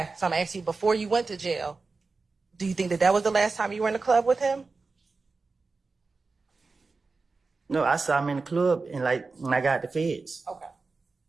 So I'm asking you, before you went to jail, do you think that that was the last time you were in the club with him? No, I saw him in the club and like when I got the feds. Okay.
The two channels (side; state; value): left; quieter; 4.1 dB